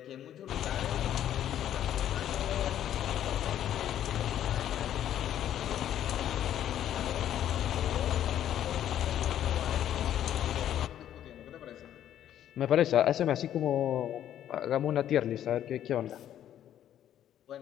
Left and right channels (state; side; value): quieter; right; 11.0 dB